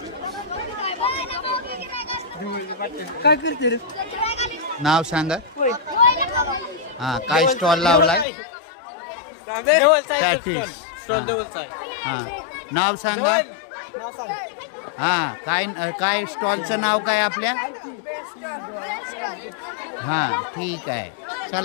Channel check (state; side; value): drops out; right; at 8.2 s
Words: काय करते रे? नाव सांगा. हां, काय स्टॉल लावलाय? हां, नाव सांगा. हां, काय स्टॉलचं नाव काय आपल्या? हां, ठीक आहे.